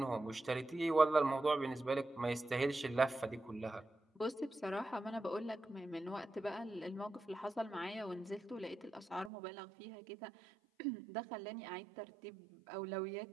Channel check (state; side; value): drops out; left; at 9.3 s